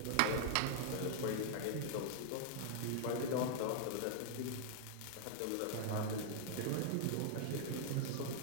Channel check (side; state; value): both; different; correlation -0.01